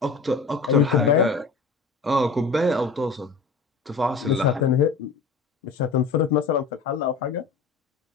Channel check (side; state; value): right; quieter; 4.4 dB